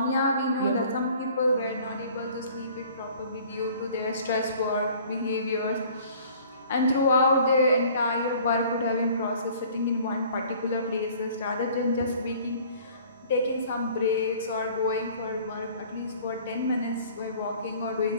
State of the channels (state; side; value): inverted; both; correlation -0.51